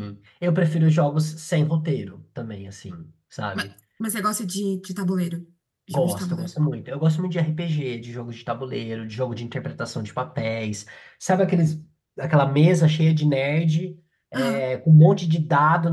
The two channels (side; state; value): both; identical; correlation 1.00